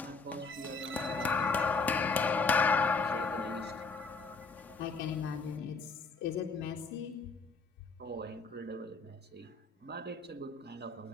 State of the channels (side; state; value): right; quieter; 4.2 dB